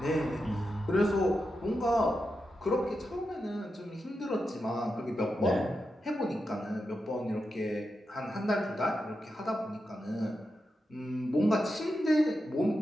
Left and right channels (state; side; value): normal; both; correlation 0.88